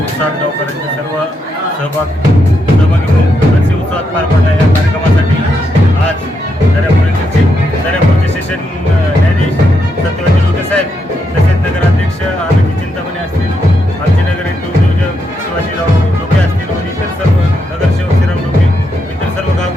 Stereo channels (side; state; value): both; normal; correlation 0.81